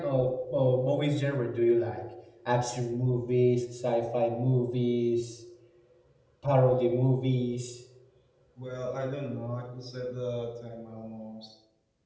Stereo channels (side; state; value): both; identical; correlation 1.00